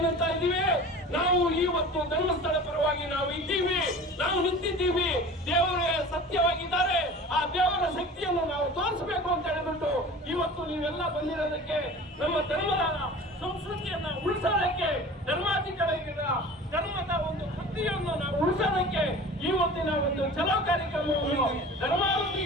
ಇದೀವಿ, ನಾವು ಇವತ್ತು ಧರ್ಮಸ್ಥಳ ಪರವಾಗಿ ನಾವು ಇದ್ದೀವಿ, ನಾವು ನಿಂತಿದ್ದೀವಿ. ದೇವರೇ ಸತ್ಯವಾಗಿದ್ದಾರೆ, ಆ ದೇವರ ಶಕ್ತಿಯನ್ನು ನಾವು ತೋರಿಸಬೇಕು ಅಂತ ಹೇಳಿಬಿಟ್ಟು ಇವತ್ತು ನೀವೆಲ್ಲ ಬಂದಿರೋದಕ್ಕೆ, ನಮ್ಮ ಧರ್ಮದ ಸಂಸ್ಕೃತಿಯನ್ನ ಉಳಿಸೋದಕ್ಕೆ, ಧರ್ಮದ ಒಂದು ಕೃತಿಯನ್ನು ನಾವು ಉಳಿಸೋದಕ್ಕೆ ಇವತ್ತಿನ ಒಂದು ಚಲೋ ಕಾರ್ಯಕ್ರಮವನ್ನು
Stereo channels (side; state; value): both; normal; correlation 0.39